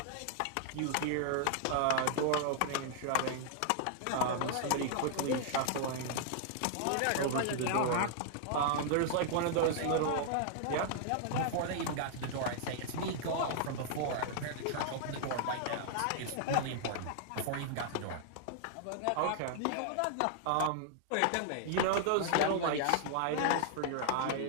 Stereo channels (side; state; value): both; different; correlation -0.01